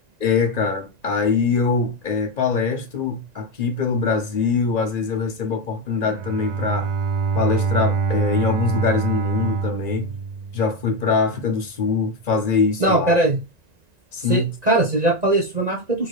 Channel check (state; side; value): late; left; 1.9 ms